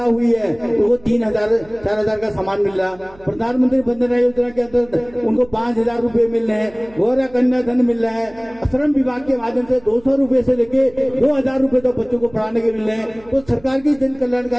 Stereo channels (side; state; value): right; noise; hum, 24 dB below the sound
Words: हुई है तो वो 3,000 4,000 का सामान मिल रहा। प्रधानमंत्री वंदना योजना के अंदर उनको 5,000 रुपए मिल रहे हैं। गौरव कन्या धन मिल रहा है। श्रम विभाग के माध्यम से 200 रुपए से लेके 2,000 रुपए तक बच्चों को पढ़ाने के मिल रहे हैं। तो सरकार की जन